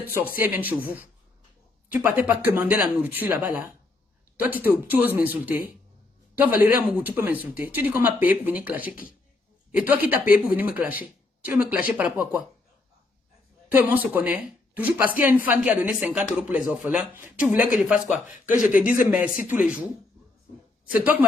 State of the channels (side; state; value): right; quieter; 3.2 dB